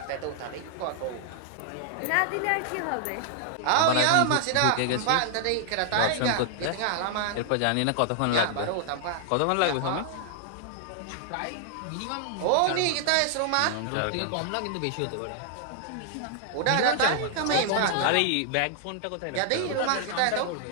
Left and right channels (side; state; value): both; different; correlation 0.00